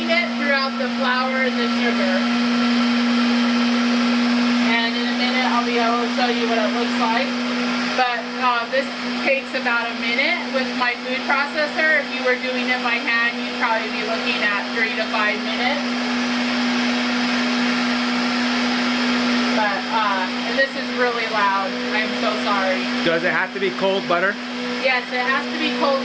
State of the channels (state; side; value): identical; both; correlation 1.00